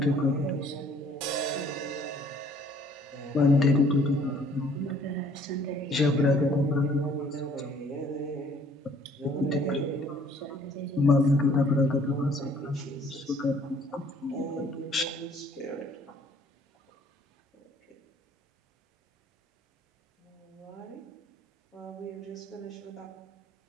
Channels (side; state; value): both; normal; correlation 0.58